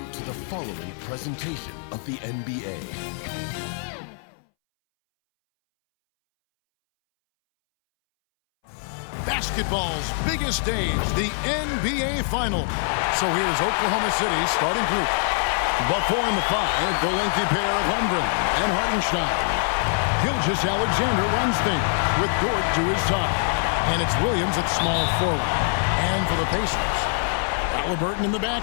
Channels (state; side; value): silent; right; 63 dB below the other